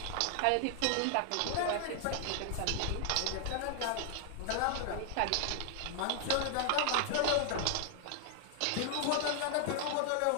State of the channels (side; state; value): both; different; correlation 0.00